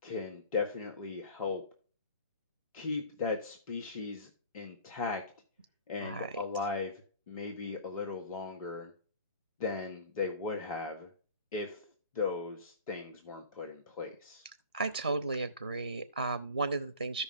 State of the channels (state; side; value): inverted; both; correlation -0.41